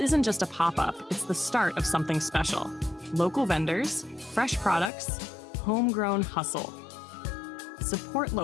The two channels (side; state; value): right; drops out; at 4.9 s